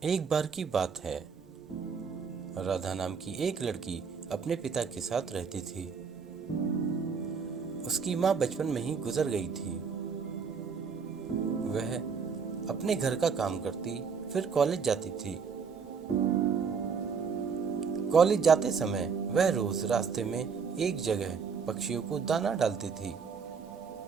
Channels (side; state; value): left; quieter; 5.9 dB